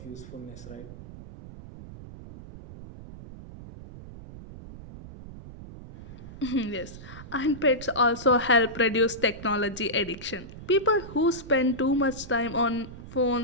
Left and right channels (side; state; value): right; noise; rumble, 15 dB below the sound